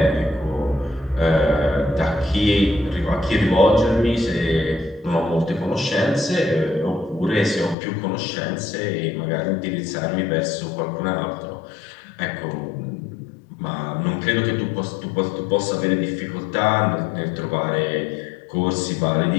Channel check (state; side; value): drops out; right; at 7.8 s